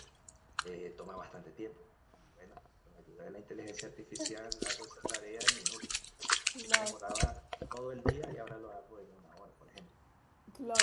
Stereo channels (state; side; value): identical; both; correlation 1.00